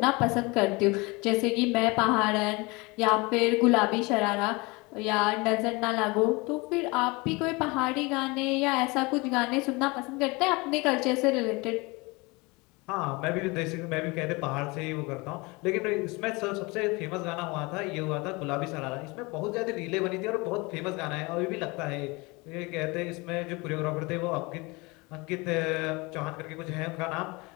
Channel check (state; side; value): quieter; right; 25.6 dB